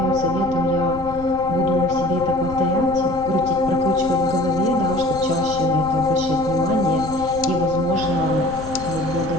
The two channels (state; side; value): noise; left; rumble, 13 dB below the sound